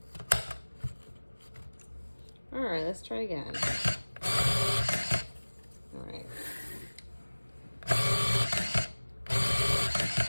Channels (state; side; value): inverted; both; correlation -1.00